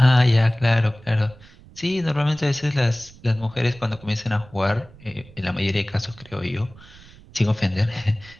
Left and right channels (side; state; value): right; noise; rumble, 22 dB below the sound